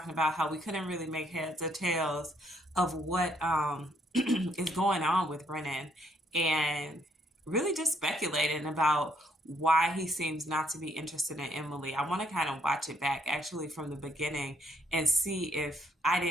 about how we couldn't really make heads or tails of what is going on with Brennan, and really just speculating about why he seems not to be interested in Emily. I want to kind of watch it back actually from the beginning and see if I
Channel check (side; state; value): both; normal; correlation 0.70